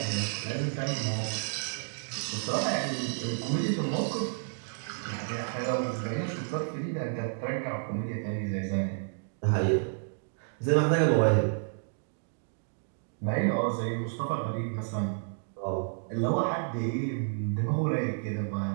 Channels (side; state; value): left; silent; digital silence